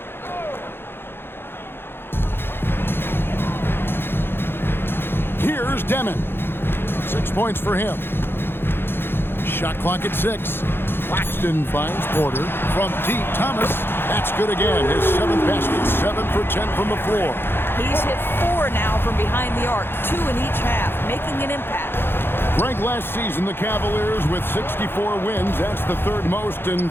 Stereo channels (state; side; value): late; right; 0.10 ms